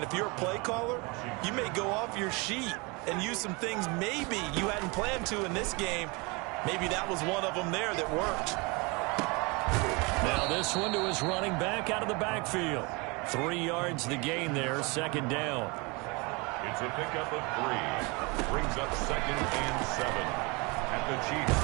if you're a play caller, you may go off your sheet and use some things maybe you hadn't planned to in this game. Maybe that was one of them there that worked. Now this one to his running back out of the backfield. 3 yards the gain there, second down. It's a pickup of 3. Brings up 2nd and 7 at the Chiefs'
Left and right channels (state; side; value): quieter; left; 28.0 dB